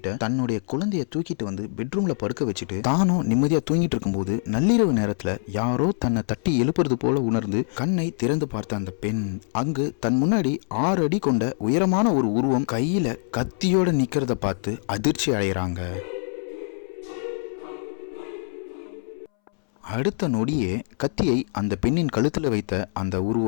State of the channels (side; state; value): right; silent; 62 dB below the other